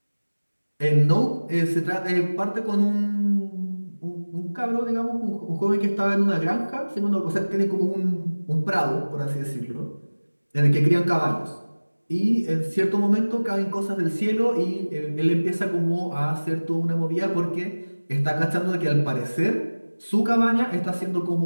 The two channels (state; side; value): inverted; both; correlation -1.00